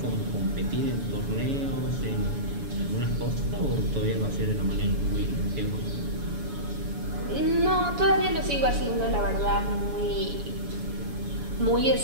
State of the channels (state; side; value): late; left; 7.0 ms